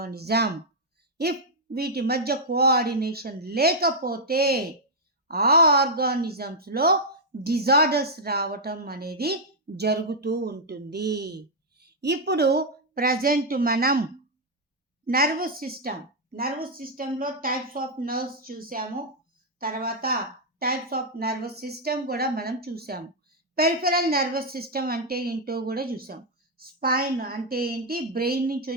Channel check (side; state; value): both; normal; correlation -0.03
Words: If వీటి మధ్య కోఆర్డినేషన్ లేకపోతే ఆ ఆర్గానిజమ్స్లో డిజార్డర్స్ రావటం అనేది జరుగుతూ ఉంటుంది. ఇప్పుడు ప్రజెంట్ మనం నర్వస్ సిస్టంలో టైప్స్ ఆఫ్ నర్వ్స్ చూసాము. తర్వాత టైప్స్ ఆఫ్ నర్వస్ సిస్టమ్ కూడా మనం చూసాము. పెరిఫెరల్ నర్వస్ సిస్టమ్ అంటే ఏంటో కూడా చూసాం. స్పైన్ అంటే ఏంటి? బ్రెయిన్ నుంచి